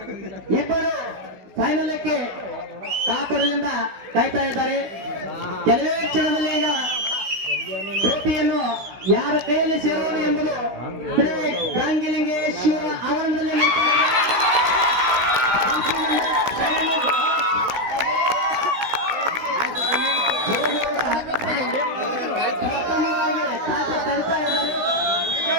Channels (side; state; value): left; late; 16 ms